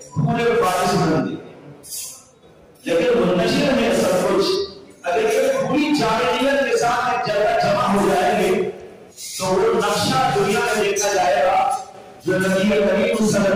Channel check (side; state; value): both; identical; correlation 1.00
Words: پورے وارث بنتے ہیں، لیکن منتشر ہے سب کچھ۔ اگر یہ پوری جامعیت کے ساتھ ایک جگہ جمع ہو جائیں گے تو وہ نقشہ دنیا میں دیکھا جائے گا جو نبی کریم صلی